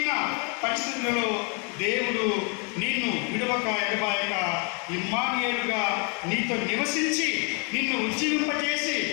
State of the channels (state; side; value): quieter; right; 35.8 dB